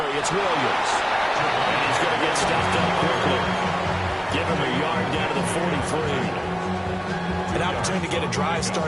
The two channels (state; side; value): identical; both; correlation 1.00